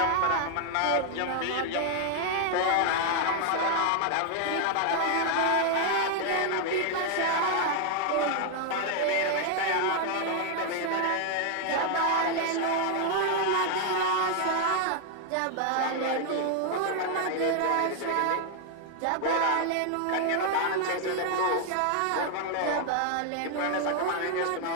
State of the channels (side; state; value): both; different; correlation 0.00